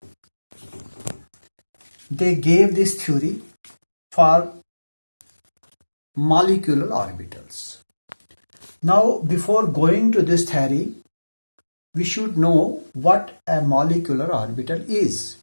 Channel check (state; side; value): inverted; both; correlation -1.00